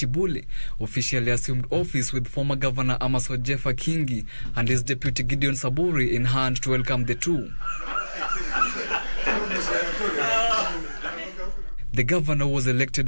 officially assumed office with former Governor Amaso Jeffa Kingi and his deputy Gideon Saburi in hand to welcome the two. The governor was elected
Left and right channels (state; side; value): inverted; both; correlation -1.00